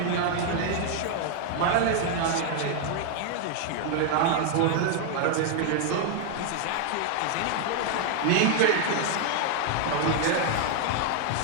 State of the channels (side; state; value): both; different; correlation 0.00